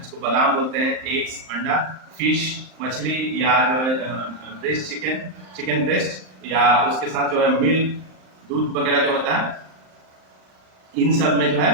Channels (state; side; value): late; left; 38 ms